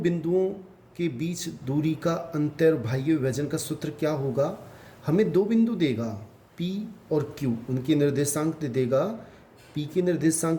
के बीच दूरी का अंत्य और बाह्य विभाजन का सूत्र क्या होगा? हमें दो बिंदु देगा, P और Q, उनके निर्देशांक दे देगा। P के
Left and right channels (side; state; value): both; identical; correlation 1.00